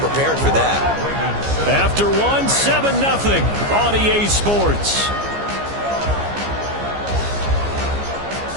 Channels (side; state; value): left; late; 14 ms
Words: for that. After one, 7-0 on EA Sports.